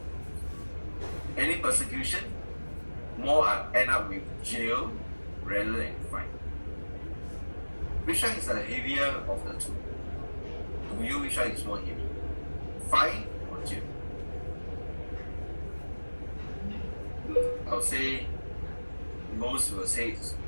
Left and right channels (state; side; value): inverted; both; correlation -1.00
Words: Any persecution, more end up with jail rather than fine. Which one is the heavier of the two? To you, which one is more heavy? Fine or jail? I'll say most will say it's